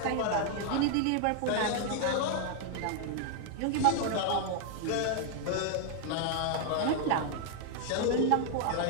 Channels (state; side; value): different; both; correlation 0.00